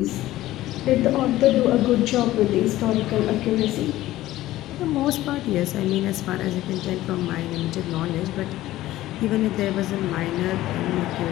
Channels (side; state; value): right; quieter; 15.5 dB